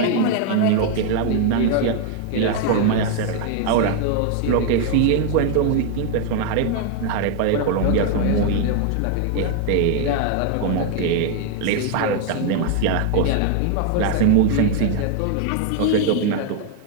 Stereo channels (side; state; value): both; different; correlation 0.01